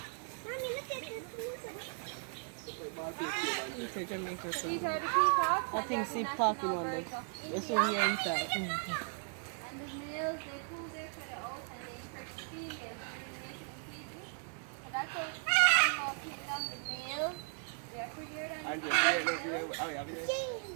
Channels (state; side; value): silent; left; 53 dB below the other